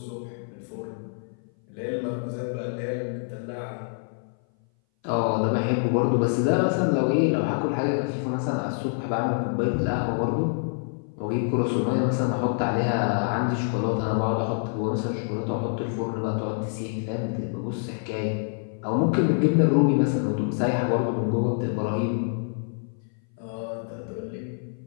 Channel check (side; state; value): right; silent; 58 dB below the other